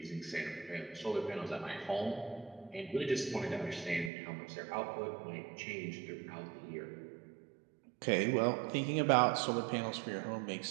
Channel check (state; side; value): drops out; left; at 4.1 s